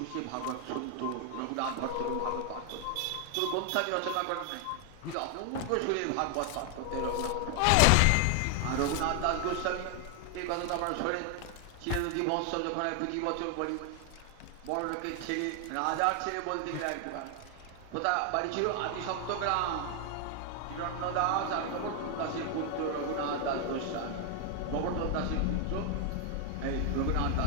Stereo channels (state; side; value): different; both; correlation 0.00